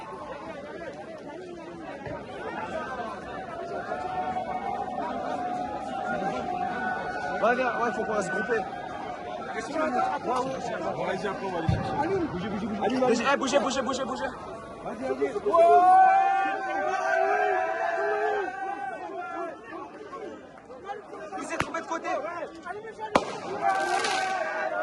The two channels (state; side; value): identical; both; correlation 1.00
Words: Ouais, viens, ouais, faut qu'on va se grouper. Bougez. Il s'est trompé de côté.